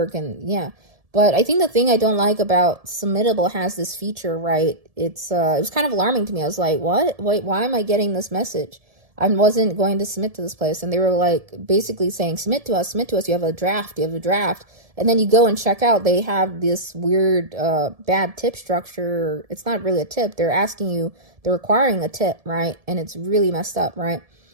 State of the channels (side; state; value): left; late; 1.7 ms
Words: and yeah. But I think the thing I don't like about Submittable has this feature, right? It was kind of alarming to me. I was like, what? Wait, why am I getting this message? I wasn't going to submit to this place. And they were like basically saying, submit to us, you have a draft. And then you go and check out, they have this weird bad tip structure. It's not really a tip. They're requiring a tip, right? And it's really messed up, right?